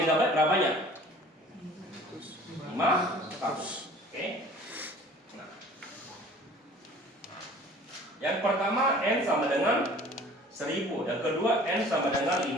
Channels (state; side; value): normal; both; correlation 0.48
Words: berapa banyak? 500. Oke. Nah. Yang pertama N sama dengan 1000, yang kedua N sama dengan